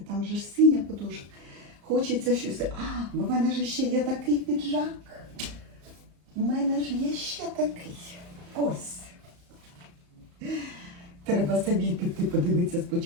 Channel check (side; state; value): left; late; 34 ms